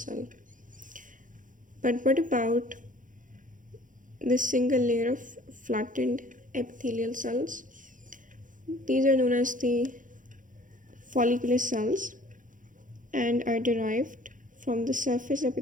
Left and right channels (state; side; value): late; left; 0.38 ms